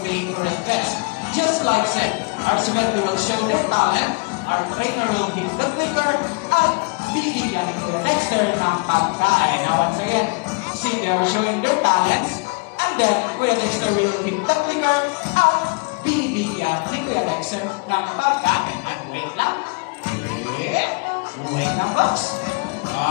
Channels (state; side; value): quieter; right; 31.3 dB